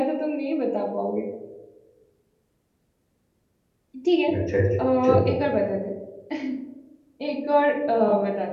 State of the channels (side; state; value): both; identical; correlation 1.00